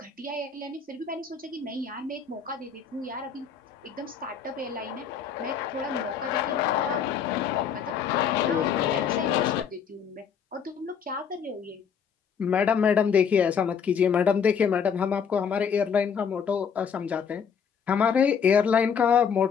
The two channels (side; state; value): right; quieter; 7.0 dB